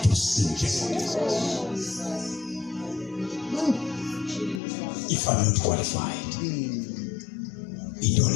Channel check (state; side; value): drops out; right; at 4.6 s